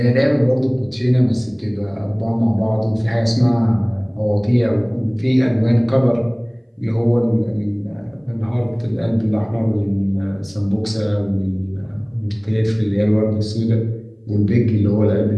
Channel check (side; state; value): both; identical; correlation 1.00